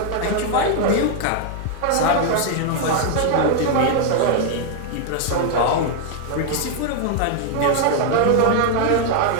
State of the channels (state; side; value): different; both; correlation 0.00